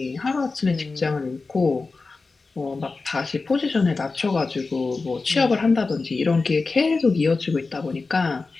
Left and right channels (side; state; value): right; quieter; 4.0 dB